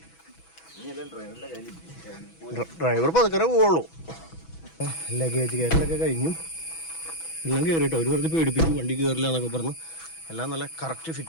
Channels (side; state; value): right; late; 6.1 ms